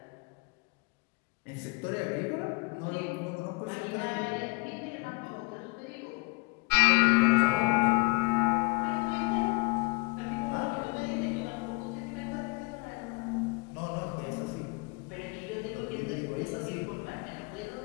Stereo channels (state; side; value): quieter; right; 28.0 dB